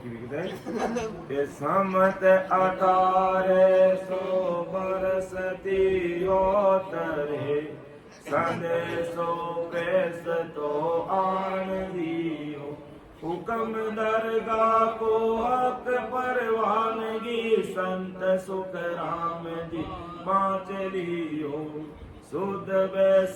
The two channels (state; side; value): identical; both; correlation 1.00